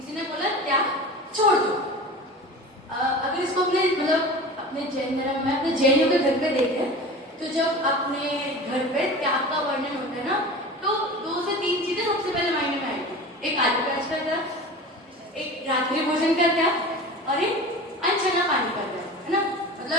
ने बोला त्याग छोड़ दो। अगर इसको अपने जैन धर्म में अपने जैनियों के घर पे देखें तो जब अपने घर पे त्याग का वर्णन होता है ना तो 2 से 3 चीजें सबसे पहले मायने में आएगी। एक आदि का त्याग, एक रात्रि भोजन का त्याग और एक अनछना पानी का त्याग, है ना।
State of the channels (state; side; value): normal; both; correlation 0.34